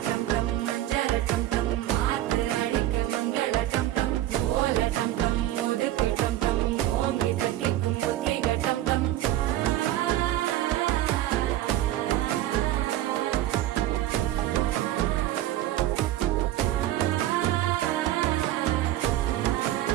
டம் டம் மஞ்சள டம் டம் மாத்து அடிக்க மங்கள டம் டம் ஓல டம் டம் ஒதுக்கு டம் டம் ஓங்கி தட்டிக்கும் புத்திக டம் டம்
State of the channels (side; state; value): left; quieter; 14.0 dB